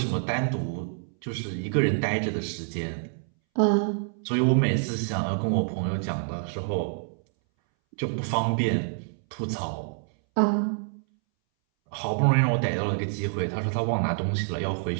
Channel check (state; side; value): silent; left; 60 dB below the other